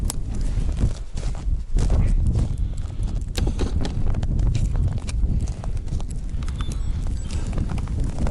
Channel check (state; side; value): identical; both; correlation 1.00